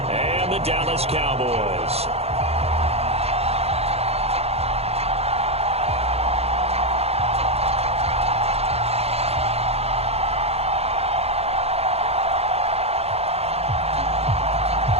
and the Dallas Cowboys.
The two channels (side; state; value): left; late; 0.29 ms